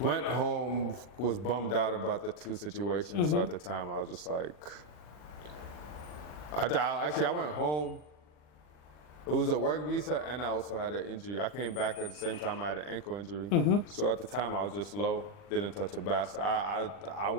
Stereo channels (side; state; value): right; late; 40 ms